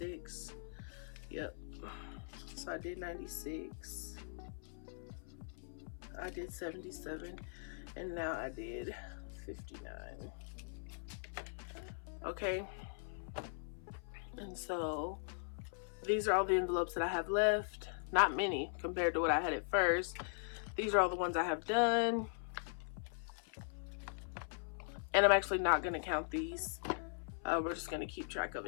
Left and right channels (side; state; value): right; silent; 51 dB below the other